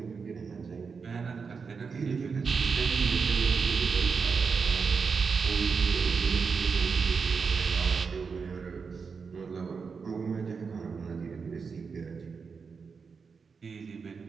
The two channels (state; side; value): quieter; left; 5.4 dB